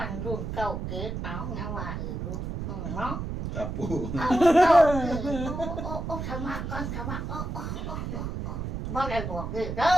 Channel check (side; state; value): right; noise; rumble, 5 dB below the sound